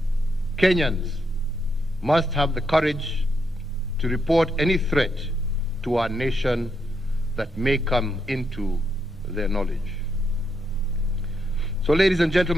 Kenyans must have the courage to report any threat to our nation that may come into their knowledge. So, ladies and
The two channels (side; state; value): both; normal; correlation 0.80